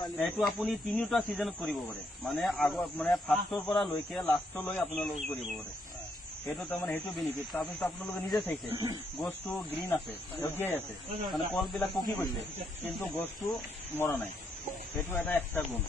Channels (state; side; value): normal; both; correlation 0.76